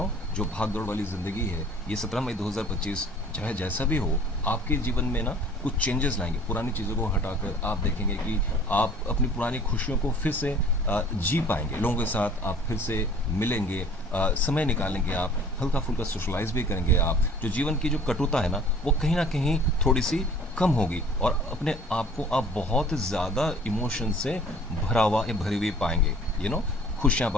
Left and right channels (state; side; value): normal; both; correlation 0.50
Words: जो भाग दौड़ वाली ज़िंदगी है, ये 17 मई 2025 चाहे जैसा भी हो, आपके जीवन में ना कुछ चेंजेस लाएंगे। पुरानी चीज़ों को हटाकर आप देखेंगे कि आप अपनी पुरानी खुशियों को फिर से जी पाएंगे। लोगों के साथ आप फिर से मिलेंगे, समय निकालेंगे, आप हल्का फुल्का सोशलाइज भी करेंगे। आप जो जीवन की जो कटुता है ना, वो कहीं ना कहीं थोड़ी सी कम होगी और अपने आप को आप बहुत ज़्यादा इमोशन से भरा हुआ या भरी हुई पाएंगे, यू नो। खुशियाँ